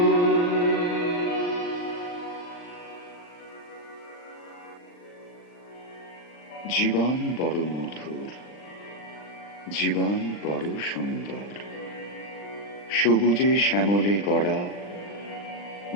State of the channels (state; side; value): late; right; 39 ms